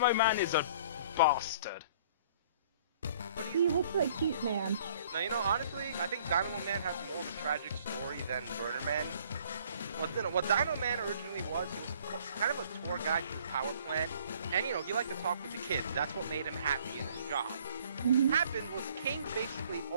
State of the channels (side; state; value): both; inverted; correlation -0.57